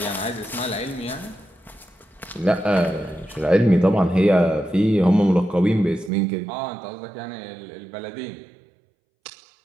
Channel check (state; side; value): drops out; left; at 6.1 s